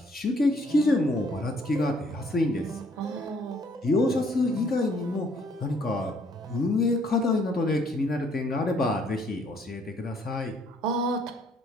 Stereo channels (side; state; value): both; normal; correlation 0.65